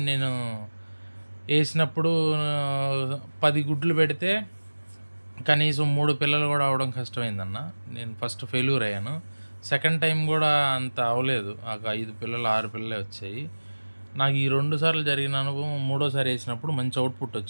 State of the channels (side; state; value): both; inverted; correlation -1.00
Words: నేను వేసినప్పుడు 10 గుడ్లు పెడితే కనీసం 3 పిల్లలు కూడా అవ్వడం కష్టమైందన్న. నేను ఫస్ట్ ఫెయిల్యూర్ అయ్యాను. సెకండ్ టైం కూడా అంత అవ్వలేదు. ఒక 5 పిల్లలు 6 పిల్లలే వచ్చాయి. నాకు ఈ 2 సార్లు జరిగిన అనుభవం మూడోసారి వేసినప్పుడు మంచి అవుట్పుట్